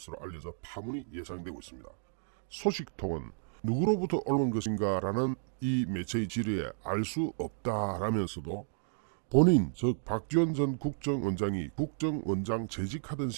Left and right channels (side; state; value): left; silent; digital silence